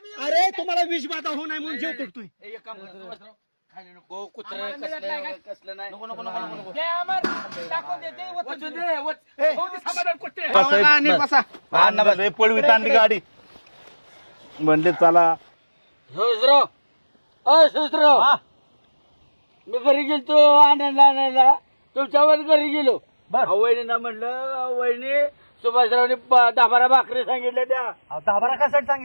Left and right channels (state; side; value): inverted; both; correlation -1.00